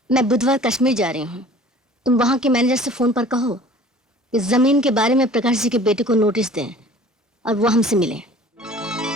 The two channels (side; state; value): both; normal; correlation 0.47